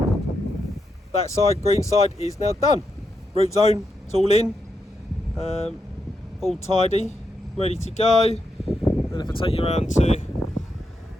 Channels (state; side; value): normal; both; correlation 0.83